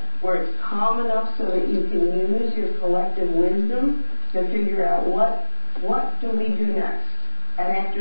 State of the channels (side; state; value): both; inverted; correlation -1.00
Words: where it's calm enough so that you can use your collective wisdom to figure out what do we do next, and